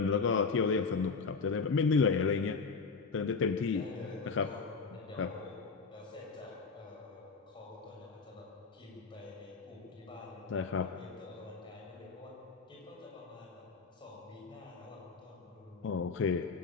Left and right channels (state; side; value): quieter; right; 4.9 dB